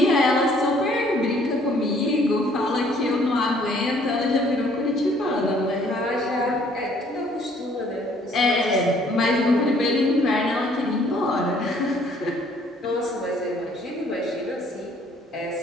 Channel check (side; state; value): both; normal; correlation 0.61